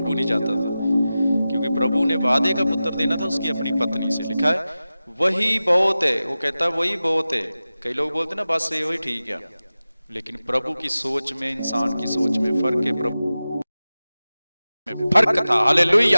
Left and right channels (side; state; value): both; inverted; correlation -0.95